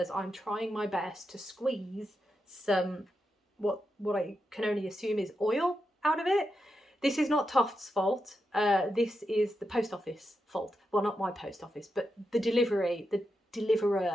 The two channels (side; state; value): both; normal; correlation 0.86